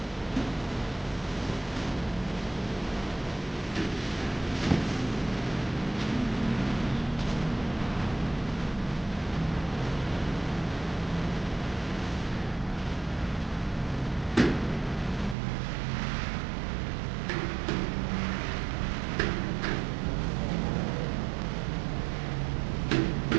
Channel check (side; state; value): left; drops out; at 15.4 s